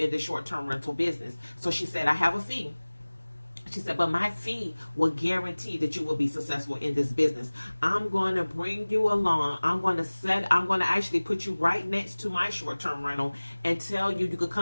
the short-term rental business. So she said, I have a fee. She said, but my fee will guarantee that you will be successful in this business. I'm going to bring you along. I'm going to actually put you right next to my short-term rental and tell you could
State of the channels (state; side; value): inverted; both; correlation -1.00